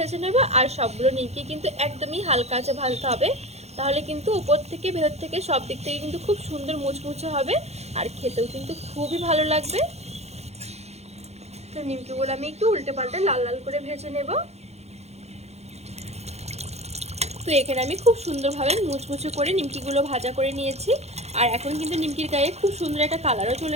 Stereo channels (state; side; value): late; left; 0.31 ms